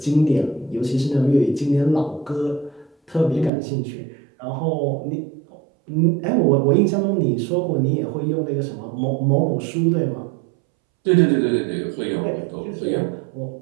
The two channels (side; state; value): left; drops out; at 3.5 s